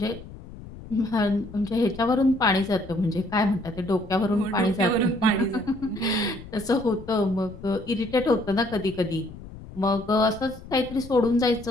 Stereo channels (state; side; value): noise; left; rumble, 16 dB below the sound